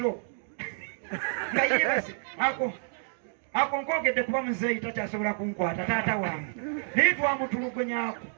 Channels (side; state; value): left; silent; digital silence